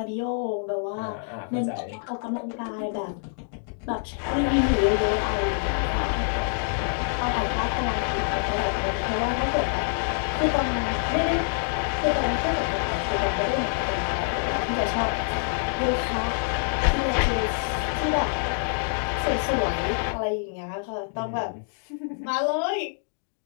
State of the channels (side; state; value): right; silent; digital silence